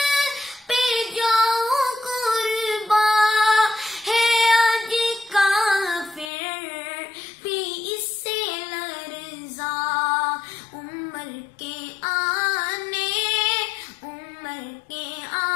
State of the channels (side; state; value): right; drops out; at 6.3 s